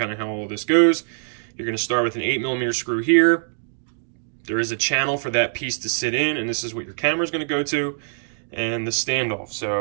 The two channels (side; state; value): left; silent; digital silence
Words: of how all this goes. You're going to start with an 8mm screw here. There is a channel for that piece to sit in, and this is what your camera is going to go to, and the standoff.